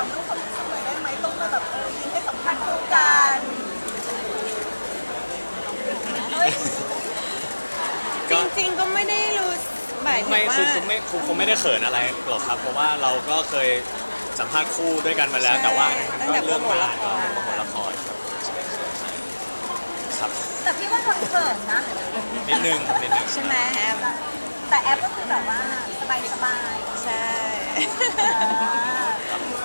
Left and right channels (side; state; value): both; inverted; correlation -1.00